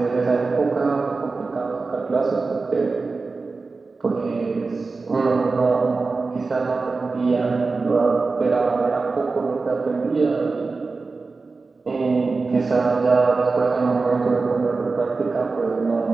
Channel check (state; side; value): quieter; left; 4.0 dB